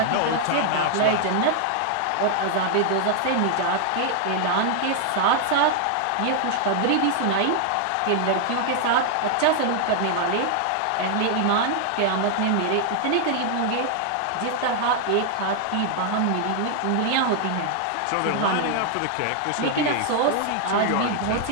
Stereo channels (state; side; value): different; both; correlation 0.00